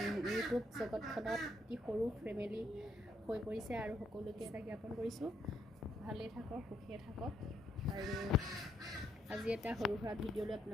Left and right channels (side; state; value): both; normal; correlation 0.74